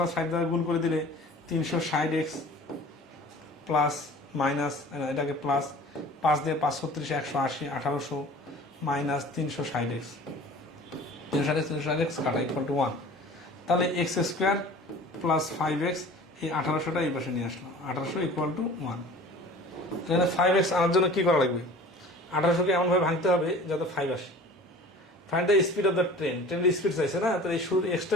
5 দ্বারা গুণ করে দিলে 360x প্লাস মাইনাস, এটাকে প্লাস 5 দিয়ে 5 36 180 1800 মাইনাস 360x, 360x কাটা ইকুয়াল টু 1। তাহলে x² + 5x, এই 1800টা এই পাশে নিয়ে আসলাম, 1800 ইকুয়াল টু 1। তাহলে 5x আনার জন্য কি করা লাগবে? 1800কে এমনভাবে ভাঙতে হবে যাতে 5 আসে। Find the speed of the train, ট্রেনের স্পিড চাইছে না, তাহলে এই শুরুর এক্সটা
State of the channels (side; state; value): both; normal; correlation 0.43